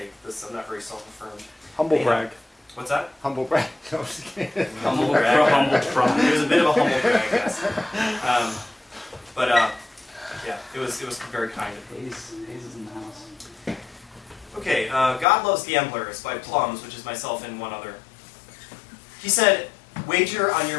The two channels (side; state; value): right; drops out; at 15.2 s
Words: this. I'm not very self-affirmed. Humble Yeah. brag. What's that? Humble brag. No, I'm just kidding. Humble brag. It was a bit of a humble brag, yes. Yeah, it was very kind of me. Hayes is in the house. Okay, God Loves Gamblers by Plums, which is myself and one other. He said, Wager on